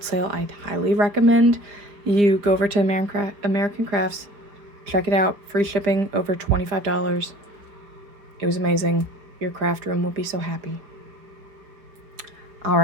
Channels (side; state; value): left; late; 4.9 ms